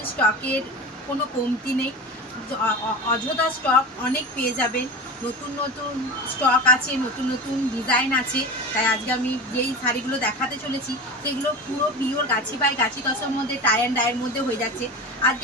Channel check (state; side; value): normal; both; correlation 0.28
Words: স্টকের কোনো কমতি নেই। অযথা স্টক অনেক পেয়ে যাবেন। নতুন নতুন স্টক আছে, নতুন নতুন ডিজাইন আছে। তাই আজকে আমি যেই শাড়িগুলো দেখাতে চলেছি সেগুলো পুরো পিওর গাছি বাই গাছি তসর মধ্যে টাই অ্যান্ড ডাইয়ের মধ্যে হয়ে যাচ্ছে।